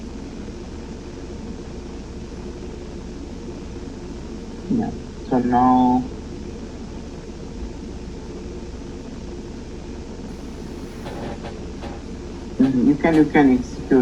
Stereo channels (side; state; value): both; identical; correlation 1.00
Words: Yeah. So now you can